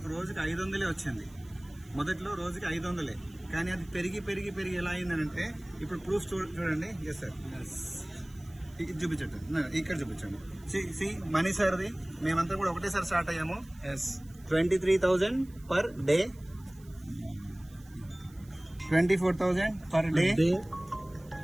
రోజుకి 500 వచ్చింది. మొదట్లో రోజుకి 500, కానీ అది పెరిగి పెరిగి పెరిగి ఎలా అయిందనంటే ఇప్పుడు ప్రూఫ్ చూడండి. ఎస్ సార్, చూపించండి, ఇక్కడ చూపించండి. సి మనీ సార్ది మేమంతా కూడా ఒకటేసారి స్టార్ట్ అయ్యాము. 23,000 per day, 24,000 per day,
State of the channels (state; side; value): noise; right; hiss, 27 dB below the sound